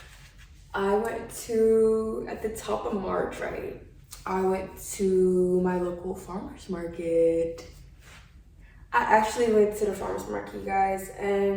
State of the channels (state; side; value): identical; both; correlation 1.00